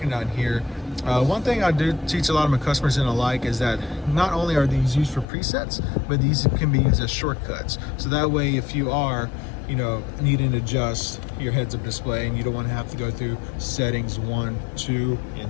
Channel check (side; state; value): right; drops out; at 5.2 s